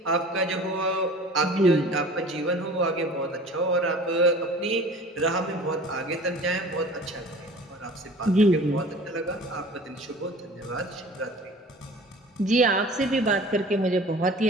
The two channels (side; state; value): both; normal; correlation 0.43